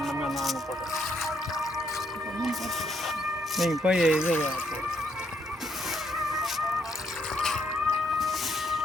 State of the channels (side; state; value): both; normal; correlation 0.73